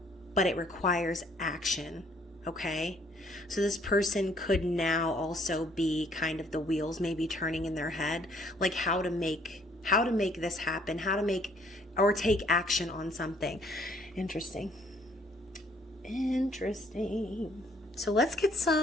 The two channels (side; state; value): both; normal; correlation 0.63